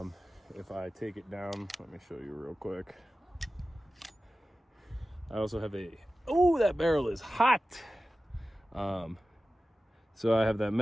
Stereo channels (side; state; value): both; normal; correlation 0.95